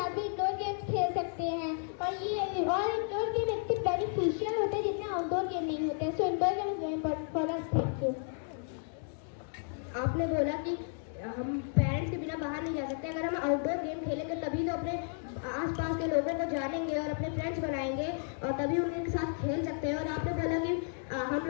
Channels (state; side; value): silent; right; 56 dB below the other